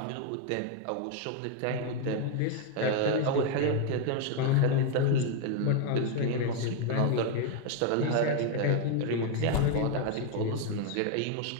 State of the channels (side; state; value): both; different; correlation 0.01